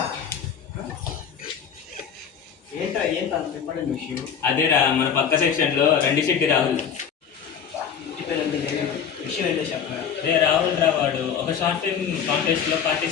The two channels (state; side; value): quieter; right; 7.5 dB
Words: ఏంట్రా ఏంటి అంత ఇంపార్టెంట్ విషయం? అదేరా మన పక్క సెక్షన్లో రండి శెట్టి రాహుల్. ఇంటి పేరు విషయం ఏంటో చెప్పరా? అదే రాహుల్ రా, వాడు ఒక షార్ట్ ఫిల్మ్ కాంటెస్ట్లో